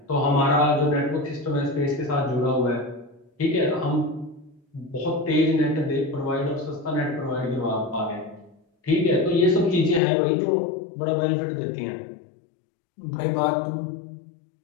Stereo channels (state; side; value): drops out; right; at 10.0 s